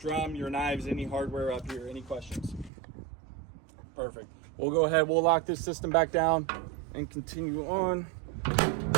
your knives, any hardware up here? Any questions? Perfect. We'll go ahead. We'll lock this system back down and continue on.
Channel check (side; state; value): left; drops out; at 2.7 s